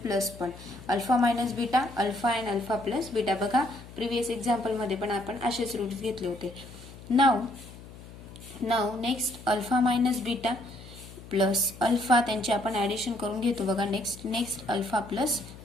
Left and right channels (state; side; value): noise; left; hum, 17 dB below the sound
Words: पण. Alpha minus beta, alpha and alpha plus beta. बघा प्रिव्हियस एक्झाम्पल मध्ये पण आपण असेच रूट्स घेतले होते. नाव next alpha minus beta plus alpha त्यांचे आपण ऍडिशन करून घेतो. बघा next alpha plus